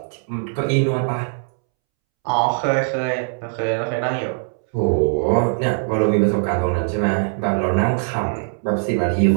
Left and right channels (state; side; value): silent; left; 65 dB below the other